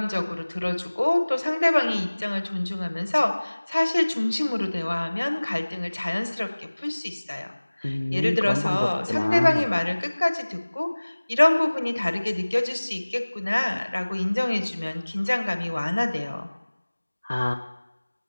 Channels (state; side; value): inverted; both; correlation -1.00